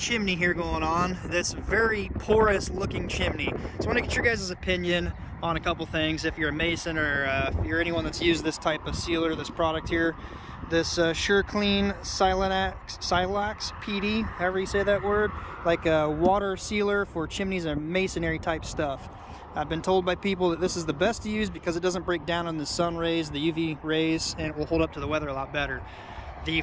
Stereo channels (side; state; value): both; identical; correlation 1.00